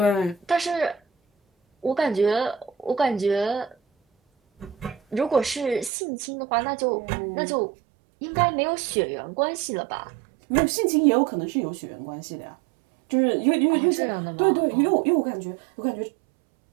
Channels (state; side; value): drops out; left; at 5.9 s